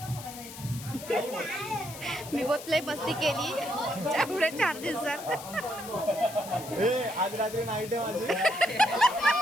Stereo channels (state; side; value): noise; left; hiss, 13 dB below the sound